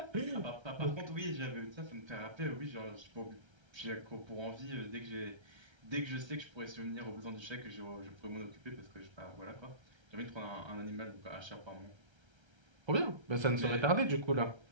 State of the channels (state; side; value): late; left; 1.3 ms